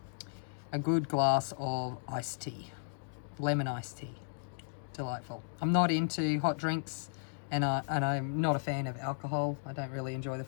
a good glass of iced tea, lemon iced tea. Delightful. I'm not into hot drinks, and I'm not a fan of alcohol. I don't really enjoy the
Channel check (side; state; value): right; silent; digital silence